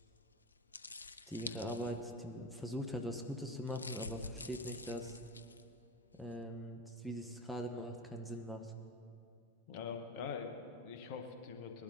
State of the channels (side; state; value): both; normal; correlation 0.24